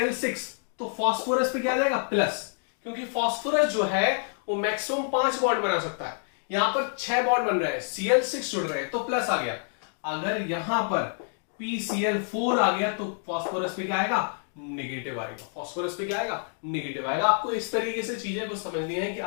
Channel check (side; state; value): right; silent; 60 dB below the other